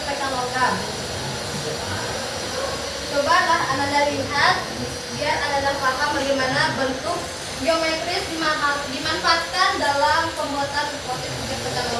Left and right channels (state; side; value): identical; both; correlation 1.00